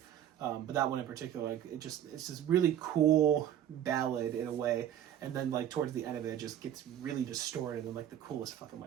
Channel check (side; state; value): left; quieter; 10.7 dB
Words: but that one in particular, like it's this really cool ballad in a way, and then like towards the end of it, it just gets really distorted in like the coolest fucking